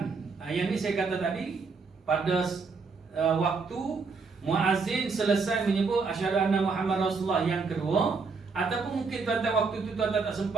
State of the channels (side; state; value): left; quieter; 4.6 dB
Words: yang ni saya kata tadi pada waktu muazzin selesai menyebut asyhadu anna Muhammad Rasulullah yang kedua, ataupun mungkin tuan-tuan waktu itu tuan-tuan tak